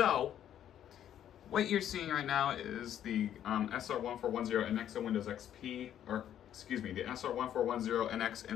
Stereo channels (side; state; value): right; quieter; 10.5 dB